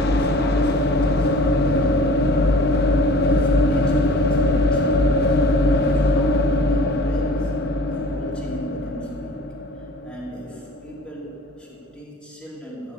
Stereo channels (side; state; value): both; normal; correlation 0.46